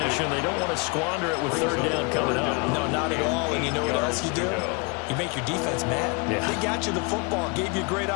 They don't want to squander it with 3rd down coming up. No, not at all. And you know what else you do? You make your defense mad. Yeah. They got you the football, gave you a great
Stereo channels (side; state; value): right; quieter; 31.6 dB